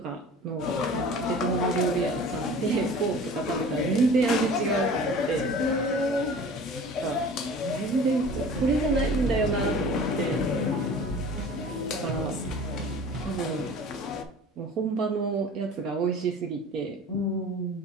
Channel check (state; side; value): normal; both; correlation 0.42